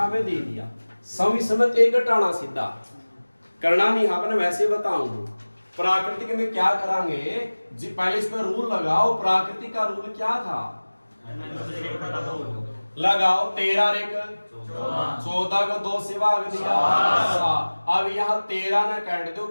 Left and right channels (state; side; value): inverted; both; correlation -1.00